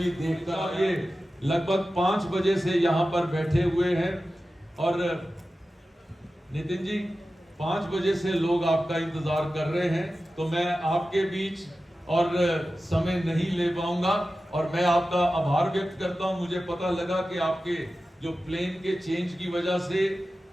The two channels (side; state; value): both; normal; correlation 0.94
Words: देखता, ये लगभग 5 बजे से यहाँ पर बैठे हुए हैं और नितिन जी 5 बजे से लोग आपका इंतजार कर रहे हैं, तो मैं आपके बीच और समय नहीं ले पाऊंगा और मैं आपका आभार व्यक्त करता हूं। मुझे पता लगा कि आपके जो प्लेन के चेंज की वजह से